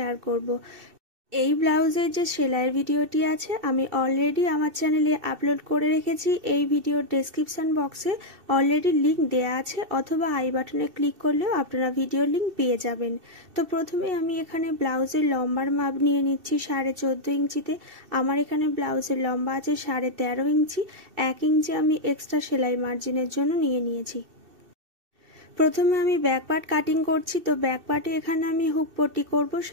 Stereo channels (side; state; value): left; late; 2.7 ms